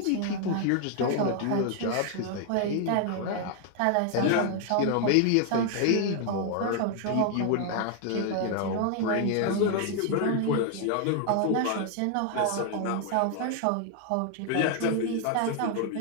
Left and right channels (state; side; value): different; both; correlation 0.00